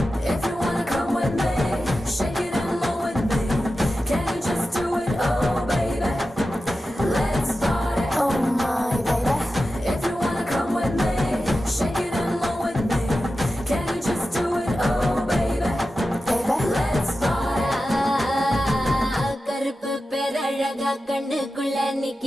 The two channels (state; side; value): normal; both; correlation 0.93